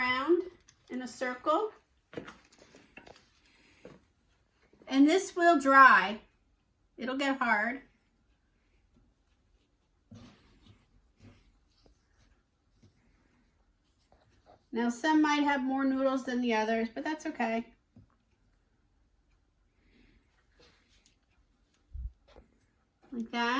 in a circle. And this will dry. It'll get hard. Now some might have more noodles than the others, but that's okay. Like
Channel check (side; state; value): both; identical; correlation 1.00